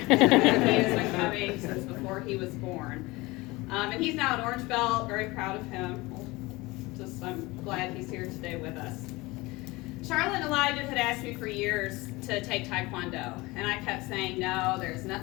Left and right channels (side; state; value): right; quieter; 22.1 dB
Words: He has been coming since before he was born. And he's now an orange belt, very proud of him. I'm glad he's here today with us. Charlotte and Elijah had asked me for years to take Taekwondo, and I kept saying, no, there's